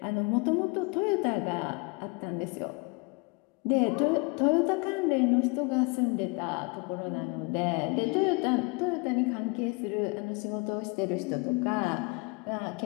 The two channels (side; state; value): right; quieter; 30.2 dB